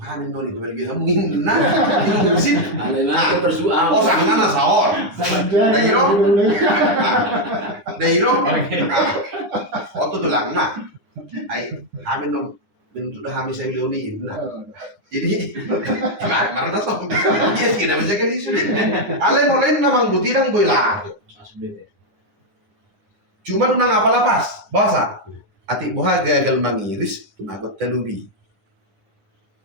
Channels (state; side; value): late; left; 9.8 ms